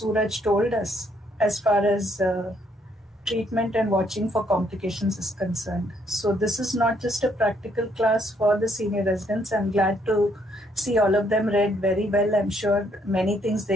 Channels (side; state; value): both; normal; correlation 0.70